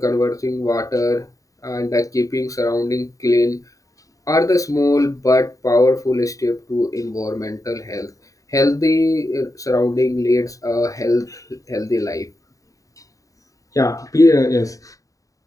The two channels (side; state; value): right; late; 0.16 ms